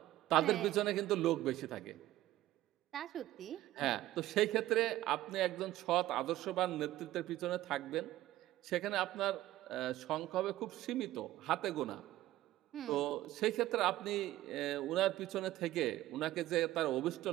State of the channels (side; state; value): left; quieter; 15.2 dB